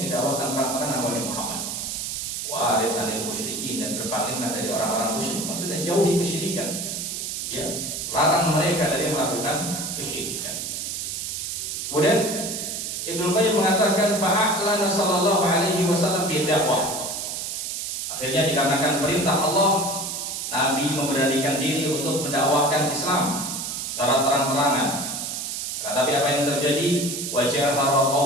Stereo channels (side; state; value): right; noise; hiss, 4 dB below the sound